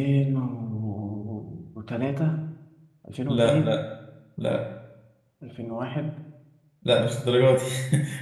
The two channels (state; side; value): identical; both; correlation 1.00